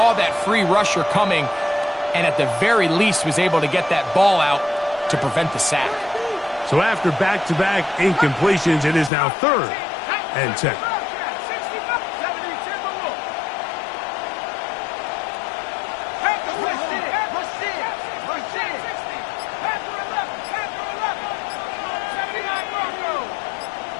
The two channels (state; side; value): drops out; right; at 9.1 s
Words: that free rusher coming, and at the very least was able to get that ball out to prevent the sack. So after back-to-back incompletions, it is now 3rd and 10.